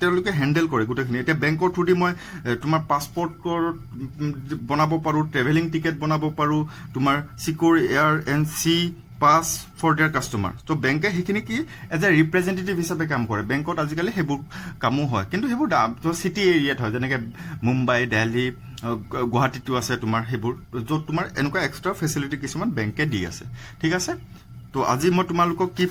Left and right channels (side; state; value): both; identical; correlation 1.00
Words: তেওঁলোকে হ্যান্ডেল কৰে গোটেইখিনি এটা বেংকৰ থ্ৰু দি মই তোমাৰ পাছপৰ্টৰ বনাব পাৰো ট্ৰেভেলিং টিকেট বনাব পাৰো তোমাৰ secure air and sea pass for their customer তো বেংকে সেইখিনি কি এজ এ ৰিপ্ৰেজেন্টেটিভ হিচাপে কাম কৰে বেংকত আজিকালি সেইবোৰ কামো হয় কিন্তু সেইবোৰ চিটি এৰিয়াত হয় যেনেকৈ মুম্বাই দিল্লী গুৱাহাটীতো আছে তোমাৰ সেইবোৰ য'ত তোমাৰ এনেকুৱা এক্সট্ৰা ফেচিলিটি কিছুমান বেংকে দি আছে ঠিক আছে তো আজি মই তোমালোকক কি